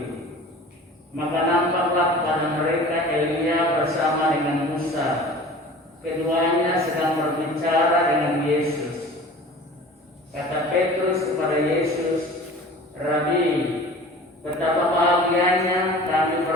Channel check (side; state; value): both; normal; correlation 0.42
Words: Maka nampaklah pada mereka Elia bersama dengan Musa. Keduanya sedang berbicara dengan Yesus. Kata Petrus kepada Yesus, "Rabi, betapa bahagianya kami